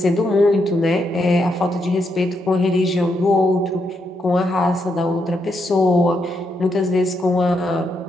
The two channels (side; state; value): both; normal; correlation 0.80